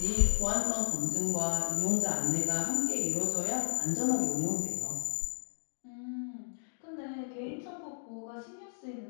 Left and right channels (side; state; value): right; silent; digital silence